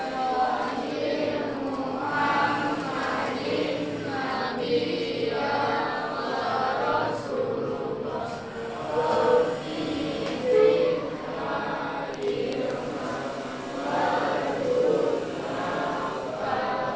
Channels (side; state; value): both; identical; correlation 1.00